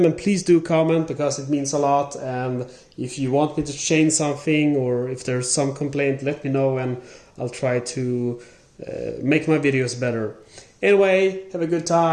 And please do comment, because it means a lot. And if you want me to change something, or if there's some complaint, let me know and I'll try to make my videos better. Anyway, have a good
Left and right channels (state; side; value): identical; both; correlation 1.00